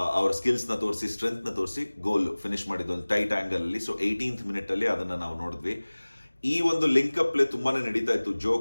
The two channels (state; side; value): inverted; both; correlation -1.00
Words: ಅವರ ಸ್ಕಿಲ್ಸ್ ನ ತೋರಿಸಿ, ಸ್ಟ್ರೆಂತ್ ನ ತೋರಿಸಿ ಗೋಲ್ ಫಿನಿಶ್ ಮಾಡಿದ್ದು ಒಂದು ಟೈಟ್ ಆಂಗಲ್ ಅಲ್ಲಿ. ಸೊ 18th ಮಿನಿಟ್ ಅಲ್ಲಿ ಅದನ್ನ ನಾವು ನೋಡಿದ್ವಿ. ಈ ಒಂದು ಲಿಂಕ್ ಅಪ್ ಪ್ಲೇ ತುಂಬಾನೇ ನಡೀತಾ ಇತ್ತು.